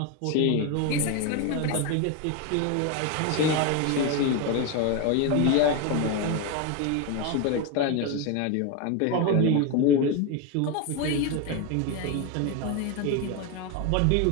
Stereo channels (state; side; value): different; both; correlation 0.02